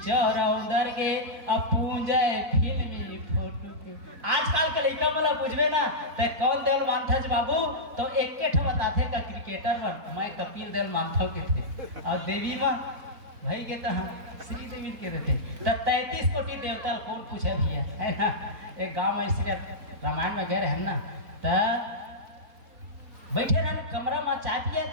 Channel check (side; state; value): left; late; 4.1 ms